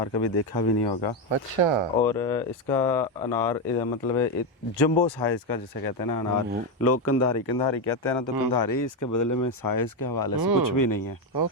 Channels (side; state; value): both; normal; correlation 0.08